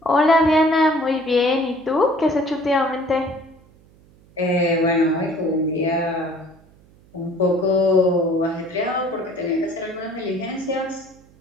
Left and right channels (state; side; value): noise; right; hum, 28 dB below the sound